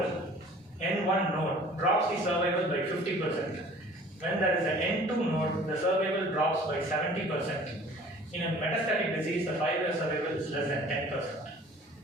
N1 node drops the survival by 50%. When there is an N2 node, the survival drops by 70%. In a metastatic disease, the 5-year survival is less than 10%.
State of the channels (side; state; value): both; normal; correlation 0.49